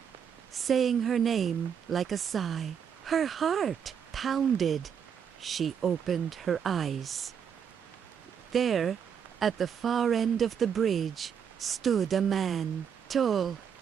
saying her name like a sigh. Her heart pounded. She opened her eyes. There, at the far end of the bridge, stood a man, tall,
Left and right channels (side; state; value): left; quieter; 7.7 dB